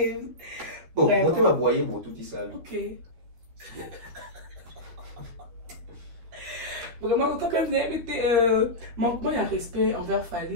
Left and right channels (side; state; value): left; late; 12 ms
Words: bon monter ma boyer mon tout isami OK vraiment quand même manquement il y a respect envers